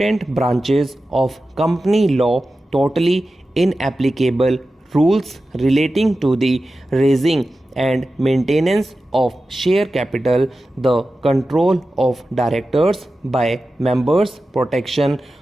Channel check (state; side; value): normal; both; correlation 0.93